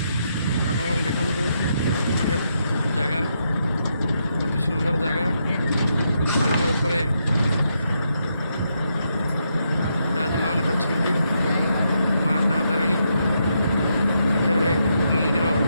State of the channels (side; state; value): both; inverted; correlation -0.80